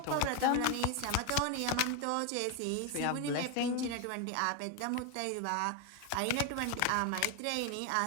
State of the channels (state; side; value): different; both; correlation 0.01